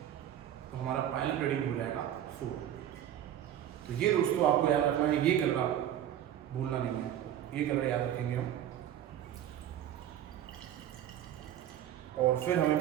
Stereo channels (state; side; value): quieter; left; 11.1 dB